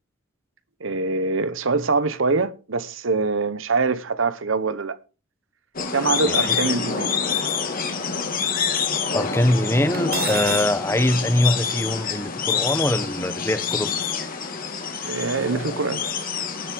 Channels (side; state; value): both; normal; correlation 0.15